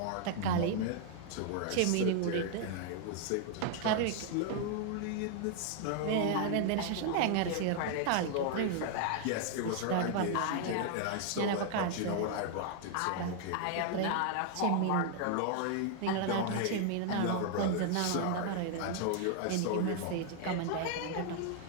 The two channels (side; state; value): both; different; correlation 0.00